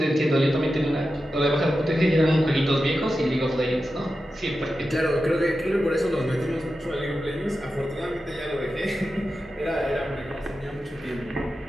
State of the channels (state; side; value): normal; both; correlation 0.91